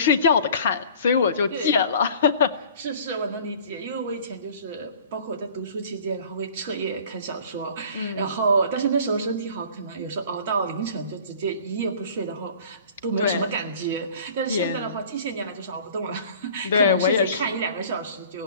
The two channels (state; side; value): inverted; both; correlation -0.47